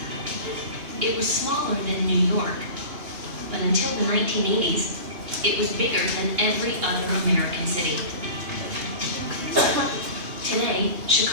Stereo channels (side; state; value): left; late; 2.9 ms